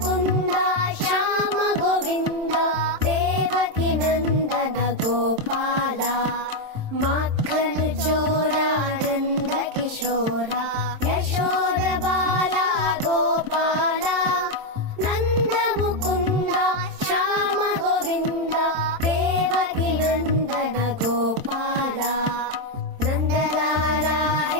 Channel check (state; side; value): late; left; 27 ms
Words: ಶ್ಯಾಮ ಗೋವಿಂದ ದೇವಕಿ ನಂದನ ಗೋಪಾಲ ಮಕ್ಕನ ಚೋರ ನಂದ ಕಿಶೋರ ಯಶೋದ ಬಾಲ ಗೋಪಾಲ ನಂದ ಮುಕುಂದ ಶ್ಯಾಮ ಗೋವಿಂದ ದೇವಕಿ ನಂದನ ಗೋಪಾಲ ನಂದಲಾಲ